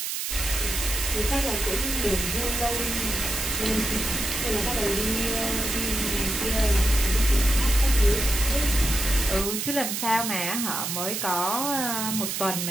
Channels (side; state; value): right; noise; hiss, 3 dB below the sound